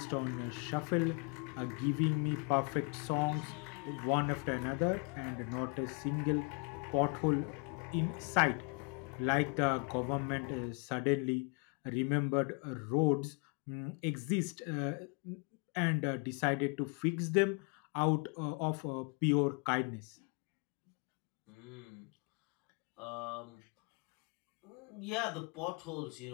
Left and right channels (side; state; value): right; quieter; 34.6 dB